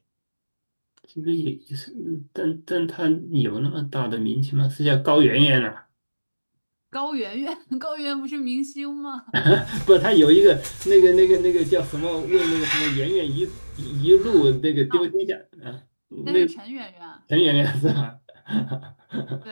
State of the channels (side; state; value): both; inverted; correlation -1.00